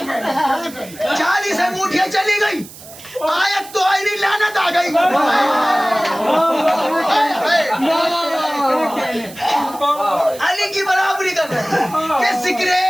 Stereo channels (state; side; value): noise; right; hiss, 17 dB below the sound